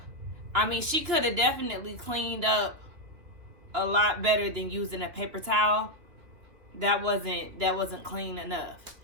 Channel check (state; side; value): late; left; 3.1 ms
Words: I mean, she could have definitely cleaned up a lot better than using a paper towel. That wasn't clean enough.